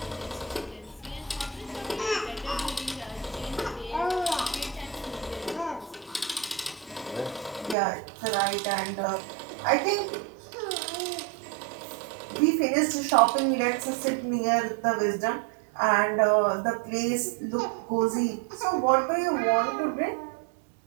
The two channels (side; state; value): left; drops out; at 7.8 s